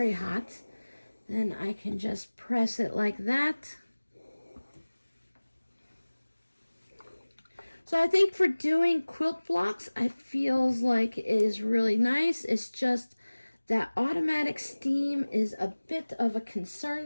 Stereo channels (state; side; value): inverted; both; correlation -1.00